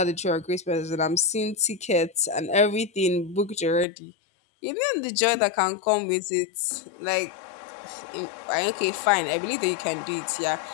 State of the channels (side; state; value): right; drops out; at 3.9 s